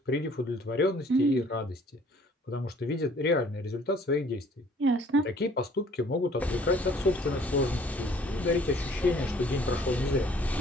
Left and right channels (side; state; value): both; normal; correlation 0.56